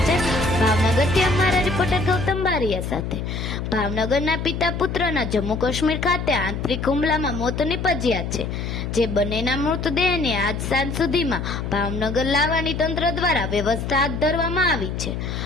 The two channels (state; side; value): noise; left; hum, 4 dB below the sound